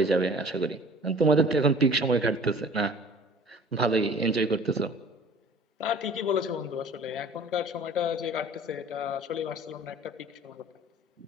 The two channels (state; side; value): normal; both; correlation 0.47